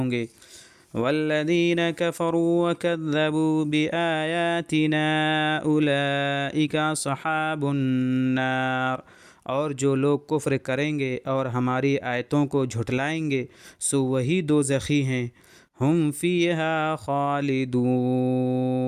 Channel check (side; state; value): both; identical; correlation 1.00